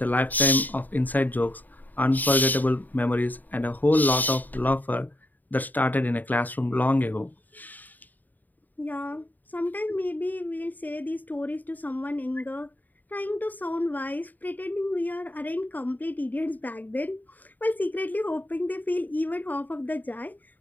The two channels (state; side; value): late; right; 0.085 ms